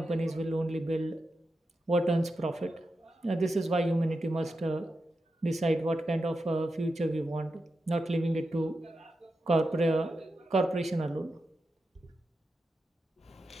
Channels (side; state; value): both; normal; correlation 0.89